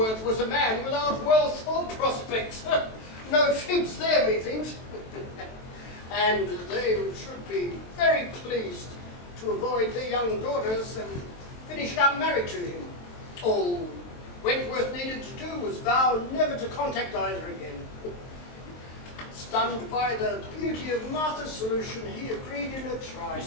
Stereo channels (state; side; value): late; right; 23 ms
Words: was a man without wealth or prospects. No fibs there, methinks. And they should be very pleased to avoid their young daughters and finish up married to him. All Wentworth needed to do was vow never to contact either again. Stunned by the beauty of Martha's solution, he agreed in a